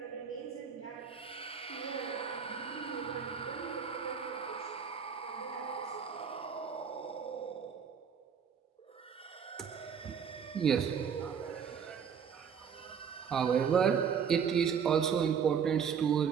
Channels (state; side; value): quieter; left; 7.2 dB